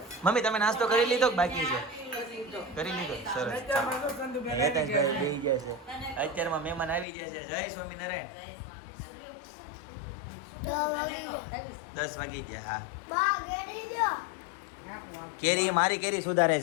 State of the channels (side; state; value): right; drops out; at 7.1 s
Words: મમ્મી તમે નાસ્તો કરી લીધો કે બાકી છે? કરી લીધો. સરસ. અત્યારમાં તો સંધુબેન આવી ગયા હેતાશભાઈ છે. બેહી ગયા છે. અત્યારમાં મહેમાન આવી ગયા છે. જય સ્વામિનારાયણ. 10 વાગી ગયા. હા કેરી એ મારી કેરી સુધારે